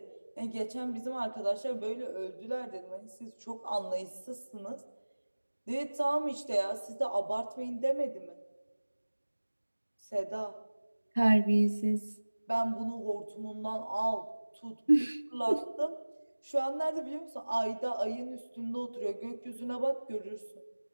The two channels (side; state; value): both; inverted; correlation -1.00